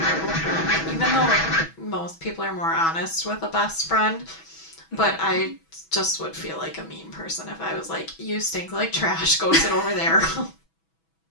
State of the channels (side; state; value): right; late; 6.1 ms